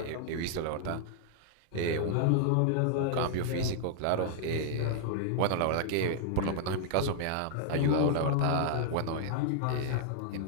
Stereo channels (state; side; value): different; both; correlation -0.01